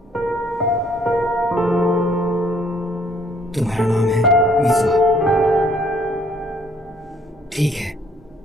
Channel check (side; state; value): both; normal; correlation 0.63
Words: तुम्हारा नाम है मिजुहा। ठीक है,